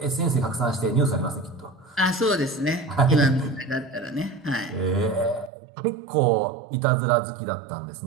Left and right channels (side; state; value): left; drops out; at 5.5 s